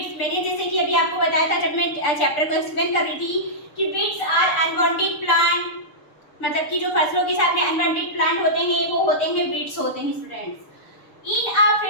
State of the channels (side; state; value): right; late; 6.7 ms